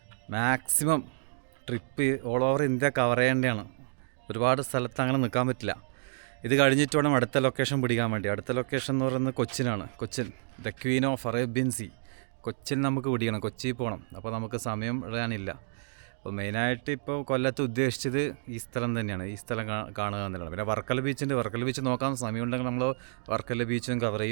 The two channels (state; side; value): silent; left; digital silence